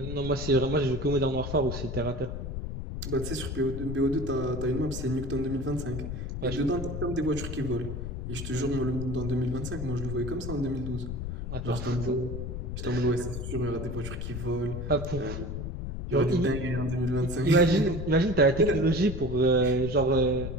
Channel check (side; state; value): left; noise; rumble, 5 dB below the sound